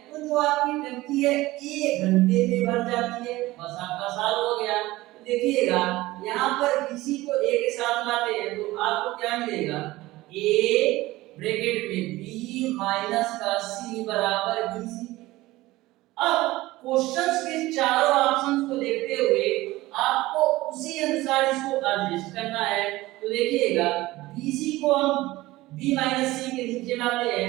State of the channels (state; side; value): quieter; left; 18.4 dB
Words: तो जो आपकी टंकी है 1 घंटे में भर जाती है। बस आपका सॉल्व हो गया। तो देखिएगा यहाँ पर BC को A के साथ लाते हैं तो आपको क्या मिलेगा, A ब्रैकेट में B माइनस का C बराबर BC। अब क्वेश्चंस के चारों ऑप्शंस को देखते हुए आपको उसी अनुसार इसको एडजस्ट करना है। तो देखिएगा BC को हम B माइनस C के नीचे लाते